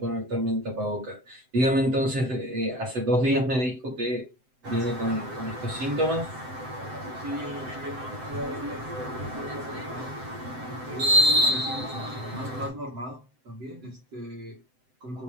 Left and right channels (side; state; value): left; late; 7.8 ms